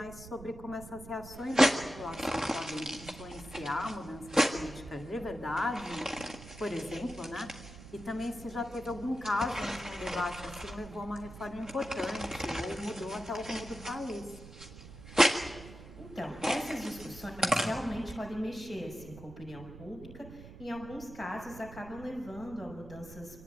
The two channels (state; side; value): noise; right; rumble, 15 dB below the sound